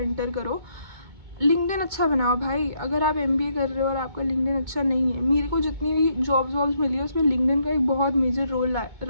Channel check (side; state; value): left; late; 2.2 ms